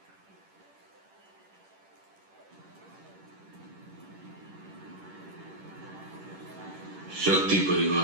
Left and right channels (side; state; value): left; late; 10 ms